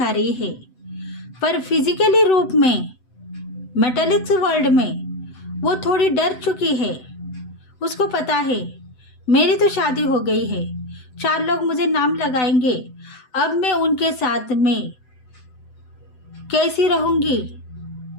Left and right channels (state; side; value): late; right; 7.9 ms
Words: रही है, पर फिजिकली रूप में मेटालिक्स वर्ल्ड में वो थोड़ी डर चुकी है। उसको पता है मेरी तो शादी हो गई है, 4 लोग मुझे नाम लगाएंगे, अब मैं उनके साथ में कैसी रहूंगी,